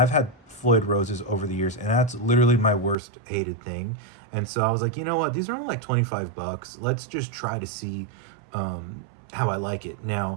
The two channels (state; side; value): drops out; left; at 3.0 s